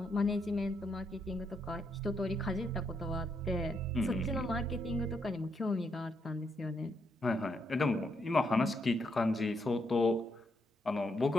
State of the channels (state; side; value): normal; both; correlation 0.78